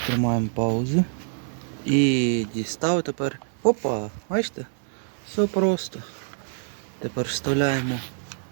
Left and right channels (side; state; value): left; silent; 60 dB below the other